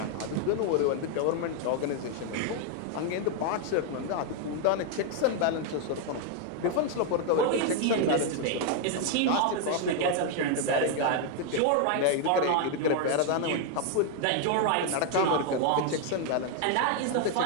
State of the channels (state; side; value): different; both; correlation 0.00